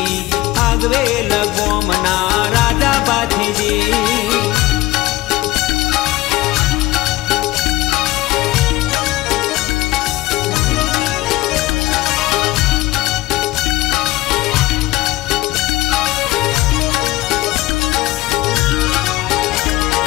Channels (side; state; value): right; quieter; 18.2 dB